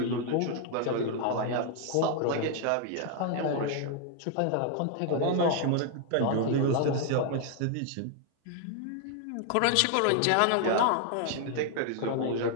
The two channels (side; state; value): both; different; correlation 0.00